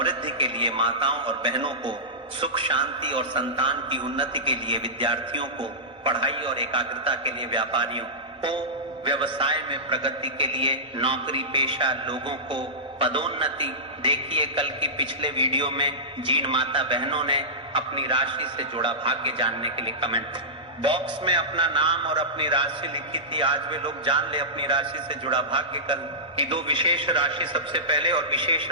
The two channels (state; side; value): normal; both; correlation -0.16